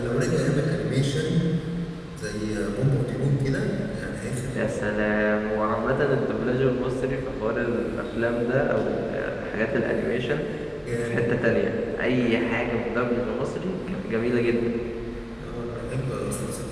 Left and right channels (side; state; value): both; identical; correlation 1.00